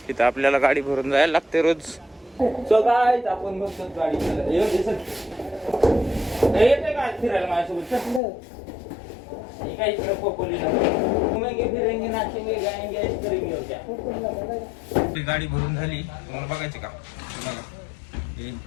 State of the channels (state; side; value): drops out; right; at 8.2 s